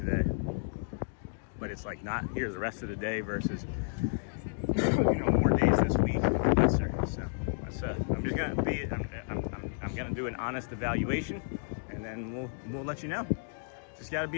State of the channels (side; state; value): right; silent; digital silence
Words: but it's like not here the rest of the day versus more days this week. Yes, sir. So I'm just gonna be I'm gonna do an honest evaluation, and then we'll let you know. Just got to